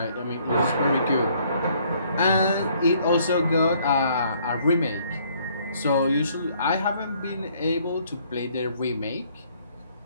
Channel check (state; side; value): inverted; both; correlation -0.64